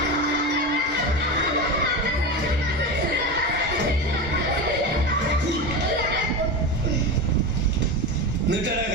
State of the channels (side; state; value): both; normal; correlation 0.22